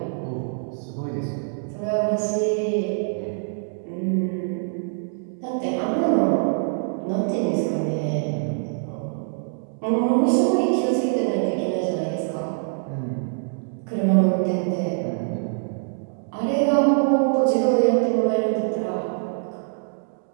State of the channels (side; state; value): left; silent; digital silence